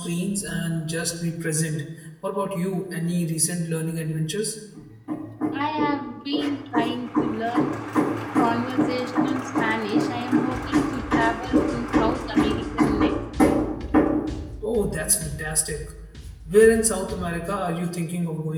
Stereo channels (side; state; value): both; identical; correlation 1.00